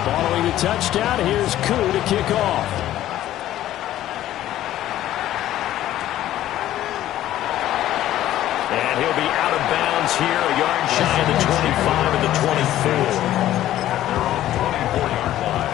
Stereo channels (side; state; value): right; quieter; 13.3 dB